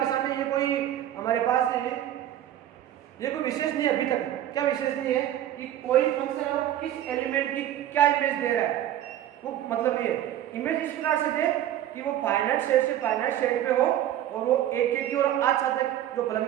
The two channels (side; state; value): left; quieter; 12.0 dB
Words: में ये कोई हमारे पास है, ये कोई विशेष नहीं है अभी तक। क्या विशेष नहीं है कि कोई फंक्शन है वो किस एलिमेंट की क्या इमेज दे रहा है, वो मतलब नहीं है। इमेज इस प्रकार से दे कि वो फाइनाइट सेट से फाइनाइट सेट पे हो और वो एक की और आच्छादक जो फलन